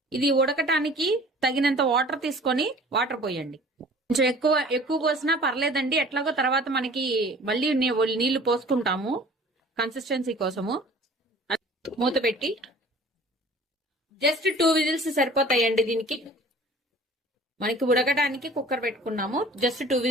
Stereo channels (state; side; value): normal; both; correlation 0.47